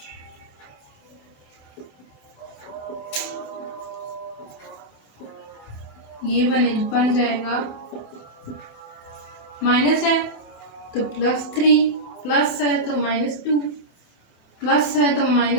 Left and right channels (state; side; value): late; right; 27 ms